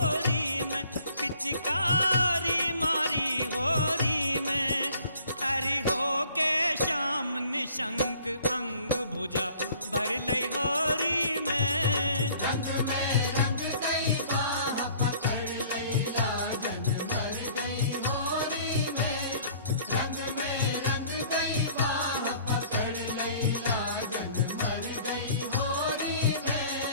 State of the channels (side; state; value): both; inverted; correlation -0.54